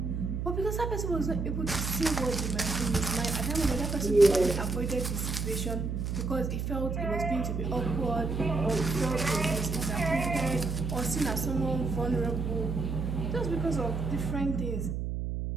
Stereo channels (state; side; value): noise; right; hum, 2 dB below the sound